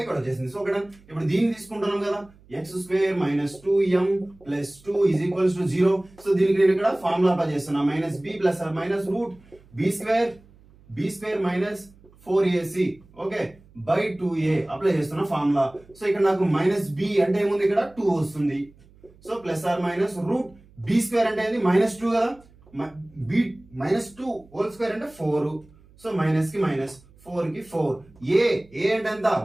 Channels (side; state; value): right; noise; hum, 27 dB below the sound